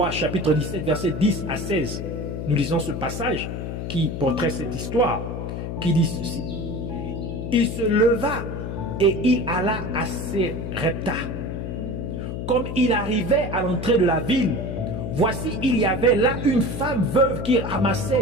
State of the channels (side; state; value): left; noise; hum, 5 dB below the sound